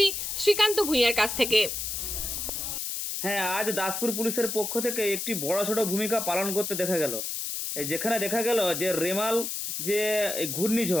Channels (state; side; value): noise; left; hiss, 3 dB below the sound